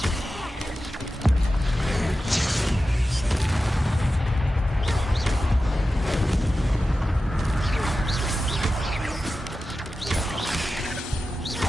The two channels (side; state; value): both; normal; correlation 0.93